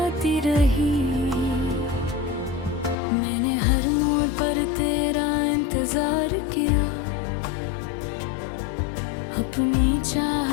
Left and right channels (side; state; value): right; drops out; at 3.0 s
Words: रही। मैंने हर मोड़ पर तेरा इंतजार किया, अपनी